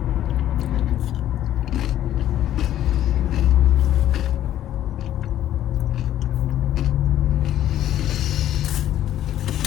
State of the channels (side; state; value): right; quieter; 12.1 dB